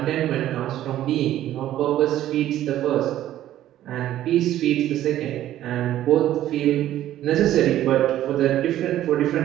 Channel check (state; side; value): quieter; left; 12.9 dB